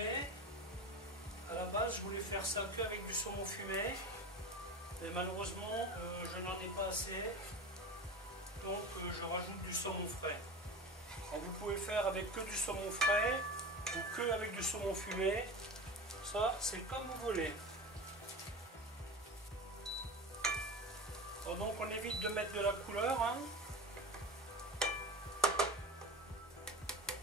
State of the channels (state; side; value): normal; both; correlation 0.30